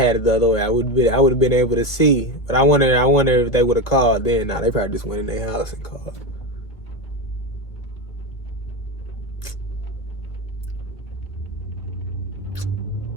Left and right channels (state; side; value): late; right; 1.7 ms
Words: it the other way. I would have been able to see. But I wonder if they would have called then. Nah, they probably just went in their house and called.